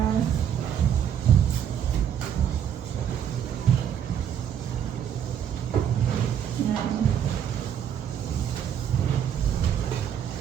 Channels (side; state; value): left; quieter; 9.0 dB